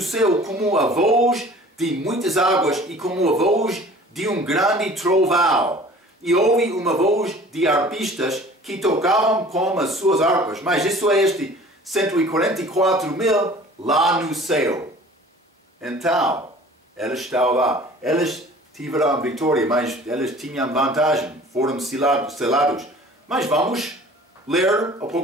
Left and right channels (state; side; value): normal; both; correlation 0.47